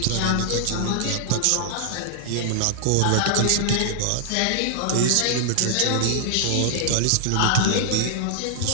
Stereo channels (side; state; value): both; different; correlation -0.01